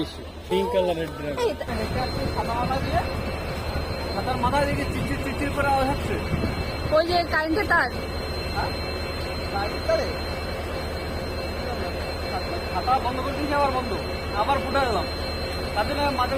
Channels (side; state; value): both; identical; correlation 1.00